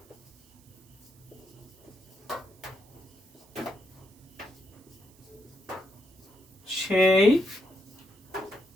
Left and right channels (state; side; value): noise; right; hiss, 28 dB below the sound